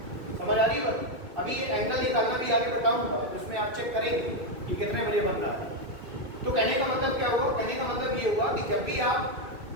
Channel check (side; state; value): left; late; 2.2 ms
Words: समझ आ रही है? अभी ये एंगल निकालना भी आगे बताऊंगा, जिसमें आप चेक करेंगे कि कितने बजे बन रहा है। तो कहने का मतलब क्या होगा? कहने का मतलब ये होगा कि जब भी आप